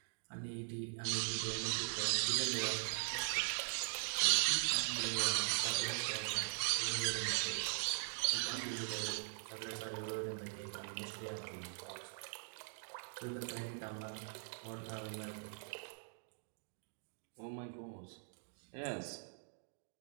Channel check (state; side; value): silent; left; digital silence